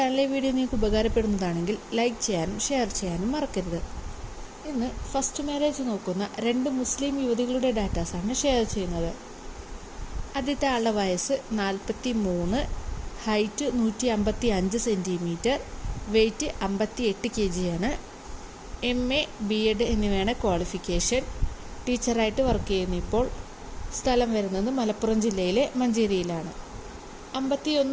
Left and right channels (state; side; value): identical; both; correlation 1.00